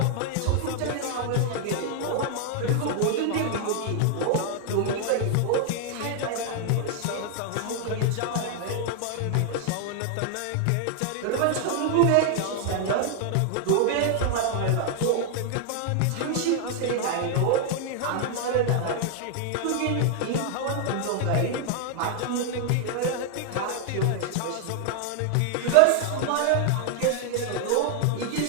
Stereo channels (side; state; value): both; different; correlation 0.00